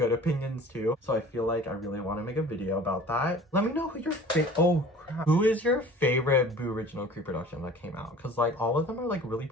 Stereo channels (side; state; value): both; normal; correlation 0.45